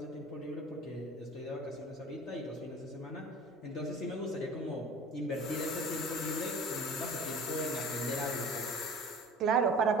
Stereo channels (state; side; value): normal; both; correlation 0.42